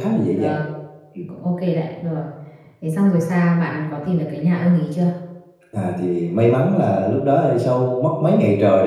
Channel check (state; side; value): identical; both; correlation 1.00